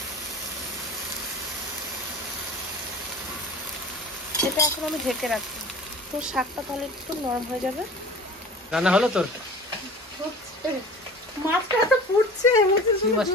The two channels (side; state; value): both; normal; correlation 0.40